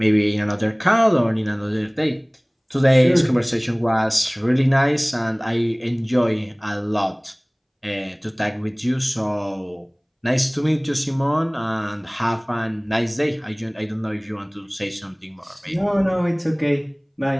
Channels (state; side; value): identical; both; correlation 1.00